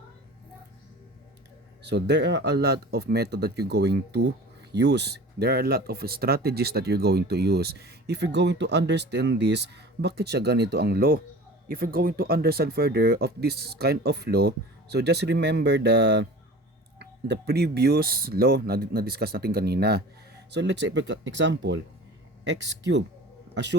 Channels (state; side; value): normal; both; correlation 0.40